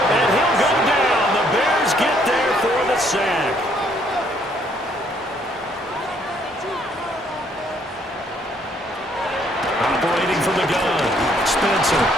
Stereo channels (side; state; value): both; normal; correlation 0.66